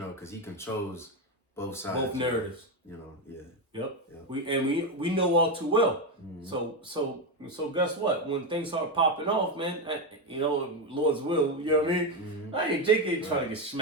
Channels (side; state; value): both; normal; correlation 0.10